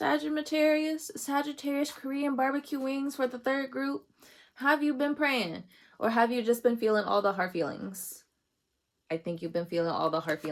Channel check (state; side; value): identical; both; correlation 1.00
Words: Korean barbecue wings for the third group? Have you been praying? Or have you just been feeling all the hard feelings? I think you've been feeling all the hard